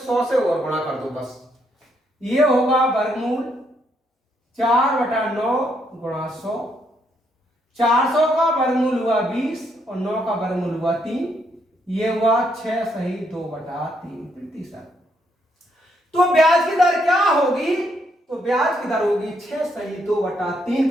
से और गुणा कर दो बस। ये होगा वर्गमूल 4/9 गुणा 100, 400 का वर्गमूल हुआ 20 और 9 का वर्गमूल हुआ 3, ये हुआ 6 सही 2/3%। तो ब्याज की दर क्या होगी? तो ब्याज की दर होगी 6 सही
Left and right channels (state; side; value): normal; both; correlation 0.74